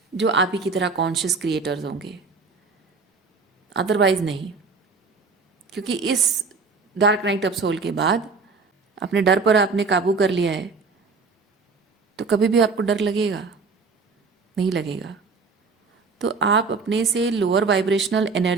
जो आप ही की तरह कॉन्शियस क्रिएटर्स होंगे, अदरवाइज नहीं। क्योंकि इस डार्क नाइट ऑफ सोल के बाद अपने डर पर आपने काबू कर लिया है, तो कभी भी आपको डर लगेगा नहीं लगेगा। तो आप अपने से लोअर वाइब्रेशनल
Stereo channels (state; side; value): quieter; left; 4.5 dB